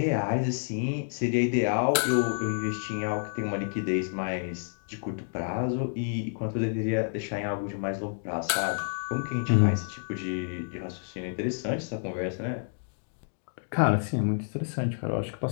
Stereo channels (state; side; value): silent; right; digital silence